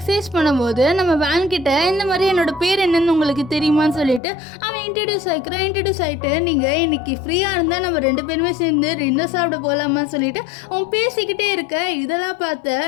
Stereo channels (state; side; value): drops out; right; at 4.2 s